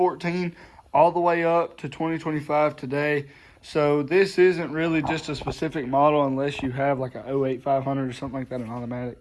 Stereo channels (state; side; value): identical; both; correlation 1.00